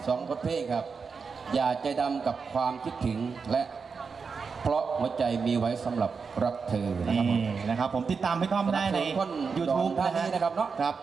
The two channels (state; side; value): quieter; left; 5.3 dB